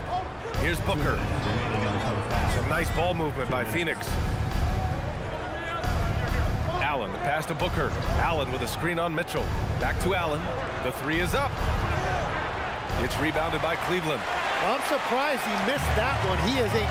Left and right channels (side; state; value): both; identical; correlation 1.00